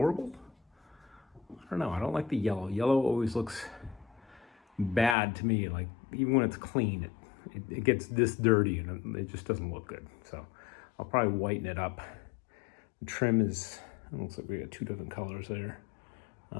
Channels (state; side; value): drops out; right; at 5.2 s